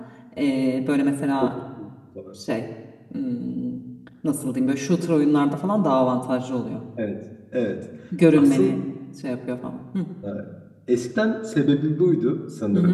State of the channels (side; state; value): both; identical; correlation 1.00